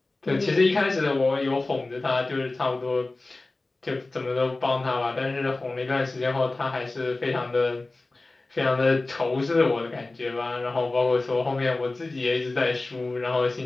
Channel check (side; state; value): right; quieter; 3.1 dB